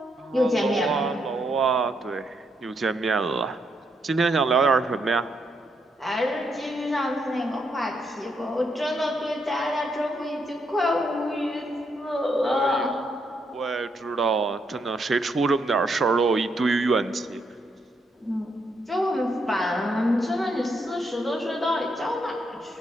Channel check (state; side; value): normal; both; correlation 0.78